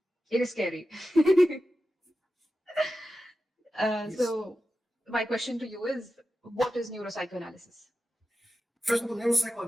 It is scary. Yes. So, my question to you is, what is neuropsychoanalysis? First of all,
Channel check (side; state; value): both; normal; correlation 0.92